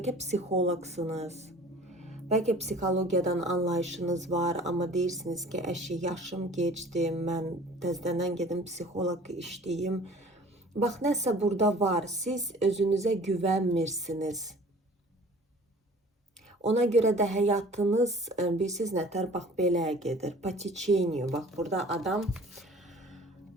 psixoloqsunuz. Bəlkə psixologiyadan anlayışınız var, amma deyirsiniz ki, əşi, yaşım geçdi, mən təzədən gedim psixoloq işləyim. Bax, nəsə burada var, siz özünüzə güvənmirsiniz. Ona görə də həyatınız, bilirsiniz nətər, bax, belə gedir, po tечению. Bax, burada adam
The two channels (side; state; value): both; normal; correlation 0.47